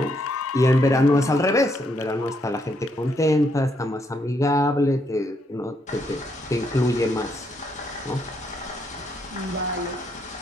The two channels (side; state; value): both; normal; correlation 0.75